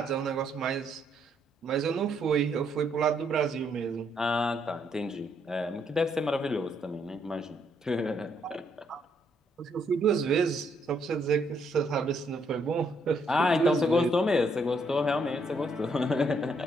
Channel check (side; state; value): both; normal; correlation 0.73